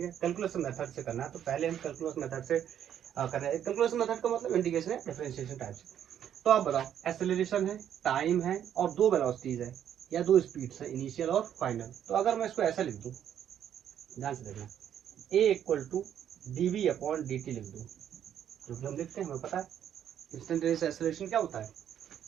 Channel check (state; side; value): quieter; left; 9.8 dB